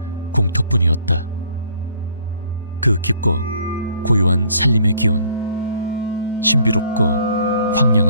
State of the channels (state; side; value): inverted; both; correlation -0.61